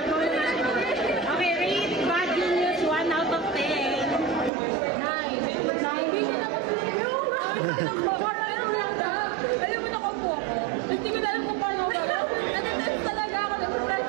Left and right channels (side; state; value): left; drops out; at 4.5 s